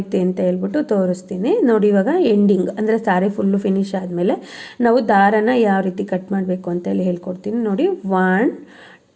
ಅಂತ ಹೇಳ್ಬಿಟ್ಟು ತೋರಿಸ್ತೀನಿ. ನೋಡಿ ಇವಾಗ ಎಂಡಿಂಗ್ ಅಂದರೆ ಸ್ಯಾರಿ ಫುಲ್ಲು ಫಿನಿಶ್ ಆದಮೇಲೆ ನಾವು ದಾರನ ಯಾವ ರೀತಿ ಕಟ್ ಮಾಡಬೇಕು ಅಂತ ಹೇಳಿ ಹೇಳ್ಕೊಡ್ತೀನಿ. ನೋಡಿ 1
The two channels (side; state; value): both; identical; correlation 1.00